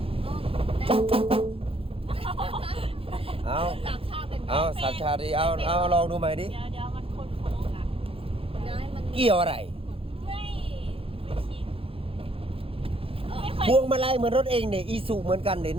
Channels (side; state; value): left; late; 0.27 ms